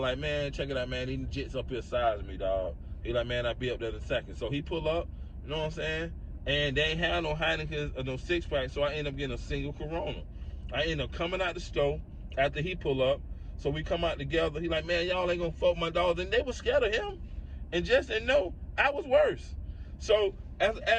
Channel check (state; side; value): identical; both; correlation 1.00